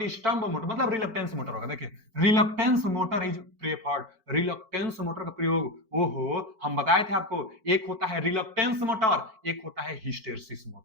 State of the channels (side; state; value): left; late; 4.5 ms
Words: मोटर मतलब रिलक्टेंस मोटर होगा। देखिए reluctance motor is preferred. Reluctance motor का प्रयोग, ओहो, हम बताए थे आपको, एक होता है रिलक्टेंस मोटर, एक होता है हिस्टेरिसिस